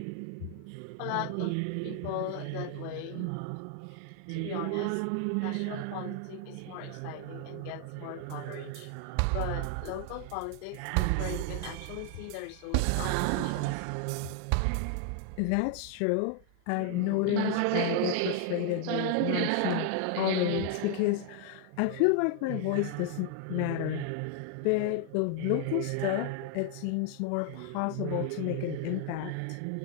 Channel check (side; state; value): both; different; correlation 0.00